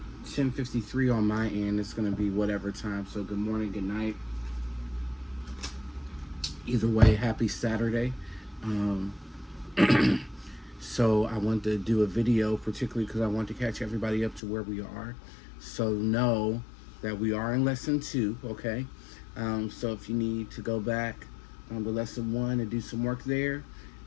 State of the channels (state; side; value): drops out; right; at 14.4 s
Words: 10:53 on my end. It's gonna be whatever time. So good morning, good night. Either way, happy Saturday. Um, so I want to do a video, particularly because I want to catch everybody up to where we are. So know that we are in lesson 2. Okay. So if you need to go back to lesson 1 and do some work there,